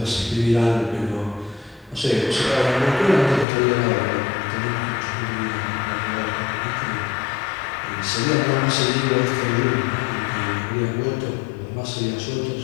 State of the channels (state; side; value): drops out; right; at 3.5 s